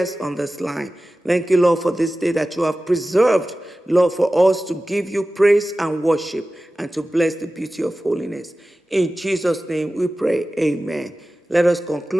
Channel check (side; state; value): both; normal; correlation 0.95